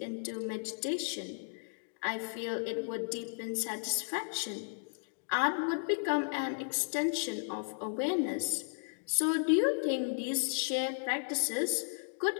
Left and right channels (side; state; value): right; silent; digital silence